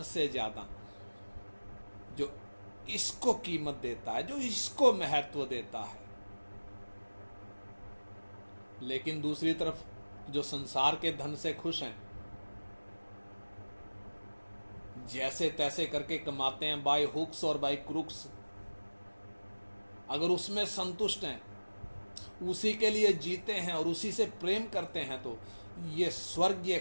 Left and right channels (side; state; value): both; inverted; correlation -1.00